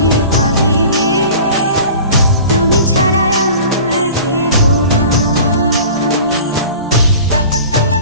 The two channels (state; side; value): inverted; both; correlation -0.41